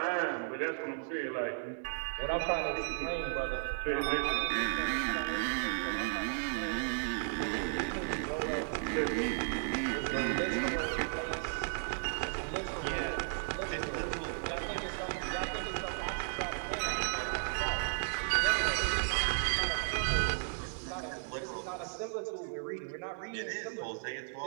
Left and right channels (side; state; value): left; silent; digital silence